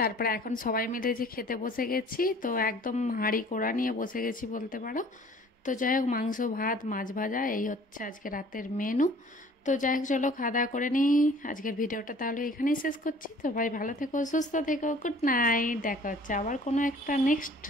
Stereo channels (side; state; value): both; normal; correlation 0.51